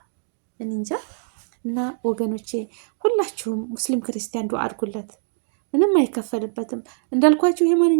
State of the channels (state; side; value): silent; left; digital silence